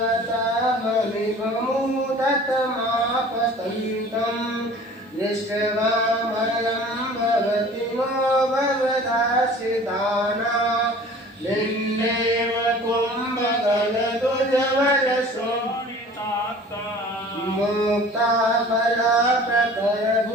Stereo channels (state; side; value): normal; both; correlation 0.46